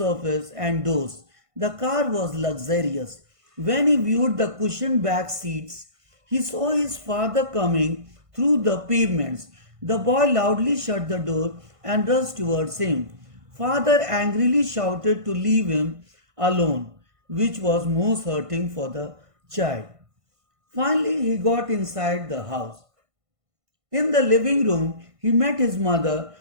and dozed. The car was luxurious. When he viewed the cushioned back seats, he saw his father coming through the pavements. The boy loudly shut the door and rushed towards him. Father angrily shouted to leave him alone, which was most hurting for the child. Finally, he got inside the house. In the living room, he met his mother,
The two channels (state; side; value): late; left; 1.5 ms